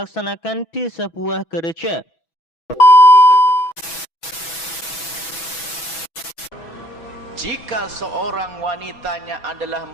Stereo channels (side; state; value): right; late; 6.1 ms